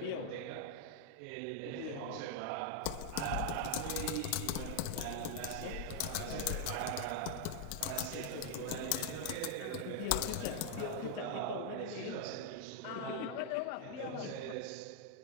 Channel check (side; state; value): both; different; correlation 0.00